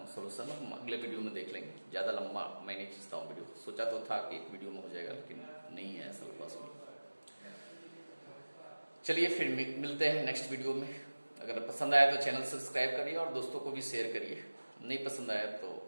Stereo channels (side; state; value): both; inverted; correlation -1.00